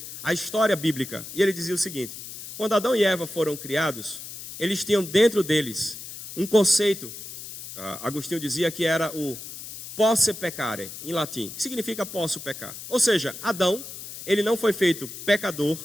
a história bíblica, e ele dizia o seguinte: quando Adão e Eva foram criados, eles tinham dentro deles um conceito, Agostinho dizia que era o posse peccare, em latim, que significa posso pecar. Ou seja, Adão, ele não foi feito pecador,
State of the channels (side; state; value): left; noise; hiss, 11 dB below the sound